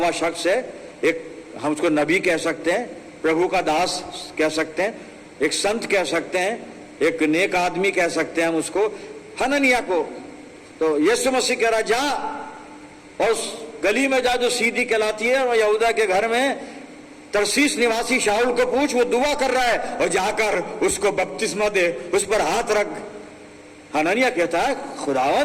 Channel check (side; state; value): both; identical; correlation 1.00